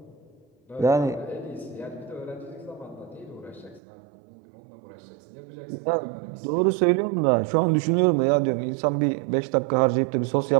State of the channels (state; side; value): drops out; left; at 3.8 s